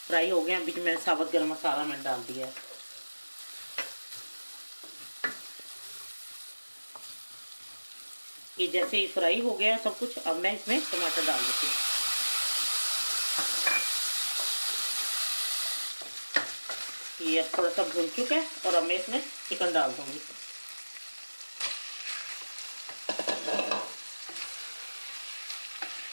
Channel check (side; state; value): both; inverted; correlation -1.00